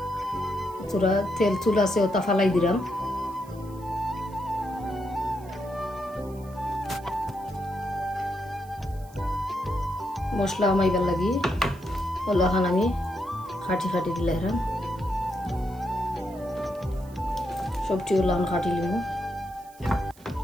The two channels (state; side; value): noise; right; hiss, 25 dB below the sound